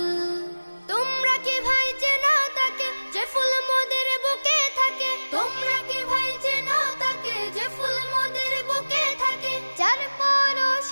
তোমরা কি ভাই চেনো তাকে যে ফুল মোদের বুকে থাকে? তোমরা কি ভাই চেনো তাকে যে ফুল মোদের বুকে থাকে? যার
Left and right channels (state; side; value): inverted; both; correlation -1.00